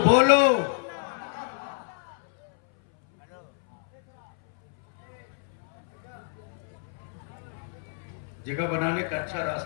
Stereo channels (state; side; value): silent; right; 58 dB below the other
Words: जगह बनाने का अच्छा